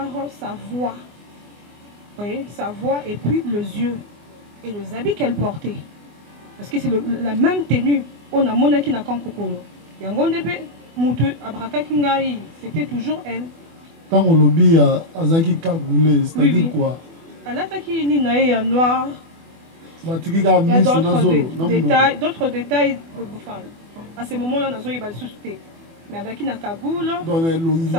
sa voix. Vous voyez, sa voix et puis les yeux et les habits qu'elle portait. Parce que c'est la même tenue. On a monaki na Kankokolo. Yangondepe, Moutou, Abraka Kingai, c'était toujours elle. Tant on lobby à Azaki Kagoulé, c'est-à-dire quoi? Alataki ni nae noir. Il y a d'autres détails. Enfin, à ce moment-là, on a eu le susté. Mais avec une cagoule,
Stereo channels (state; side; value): late; left; 24 ms